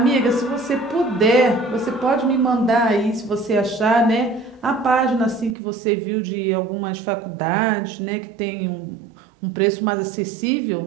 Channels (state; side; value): drops out; left; at 5.6 s